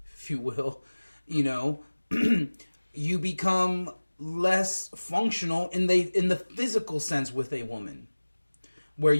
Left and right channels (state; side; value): inverted; both; correlation -1.00